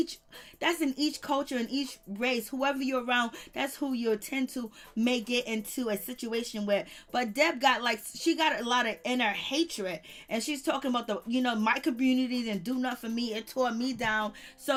culture, in each race. Whoever you're around, that's who you tend to may get into a situation with. But Deb she got a lot of inner hatred, and she's talking about my community didn't do nothing for me, it tore me down.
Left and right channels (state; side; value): identical; both; correlation 1.00